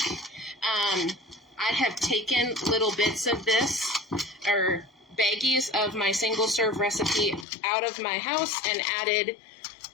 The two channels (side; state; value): right; drops out; at 7.5 s